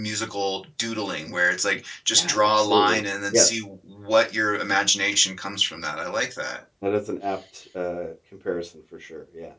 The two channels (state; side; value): identical; both; correlation 1.00